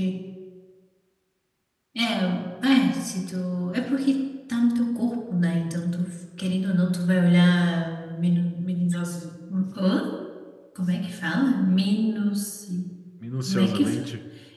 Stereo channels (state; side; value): identical; both; correlation 1.00